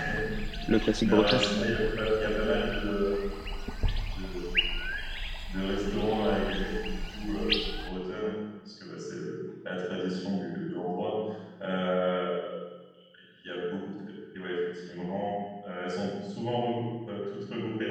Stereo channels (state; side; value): identical; both; correlation 1.00